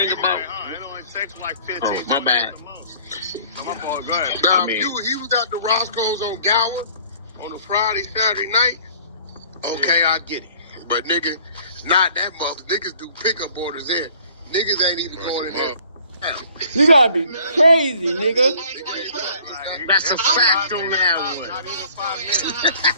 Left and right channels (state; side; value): inverted; both; correlation -0.54